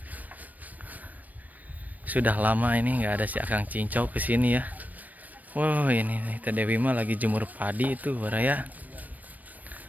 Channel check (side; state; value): left; late; 0.080 ms